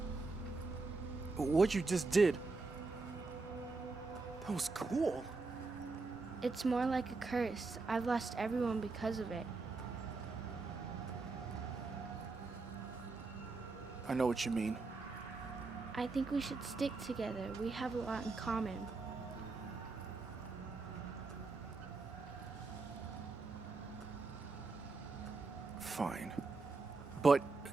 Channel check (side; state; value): left; quieter; 3.8 dB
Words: What you just did, that was cool. It's more like a curse. I've lost everyone because of it. I know what you mean. I think we should stick together. We have a lot in common. Fine. But